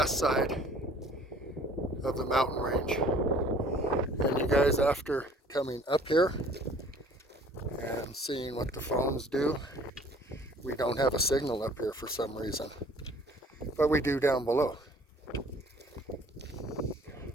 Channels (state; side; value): normal; both; correlation 0.53